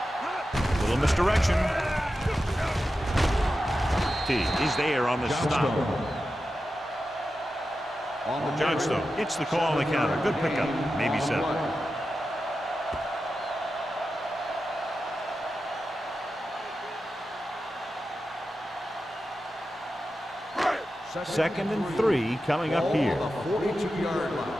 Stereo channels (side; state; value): both; normal; correlation 0.91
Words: Little misdirection. T is there on the stop. Johnstone gets the call on the counter. Good pickup. Maybe 7. Second and 3 coming up here. 42-yard